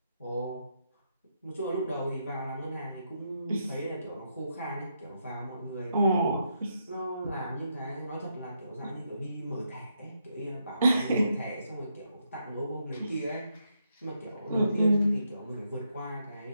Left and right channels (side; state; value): both; inverted; correlation -0.80